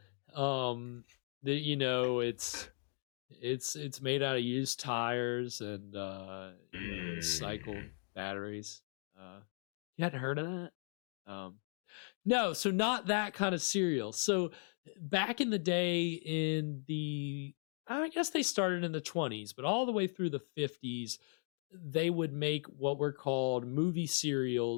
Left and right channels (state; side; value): silent; right; 53 dB below the other